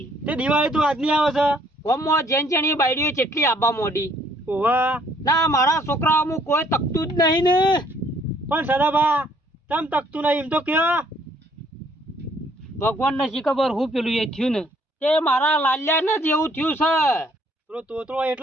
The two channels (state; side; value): normal; both; correlation 0.64